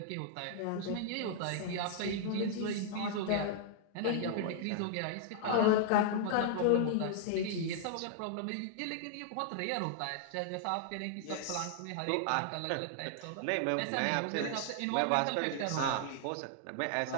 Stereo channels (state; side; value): different; both; correlation -0.01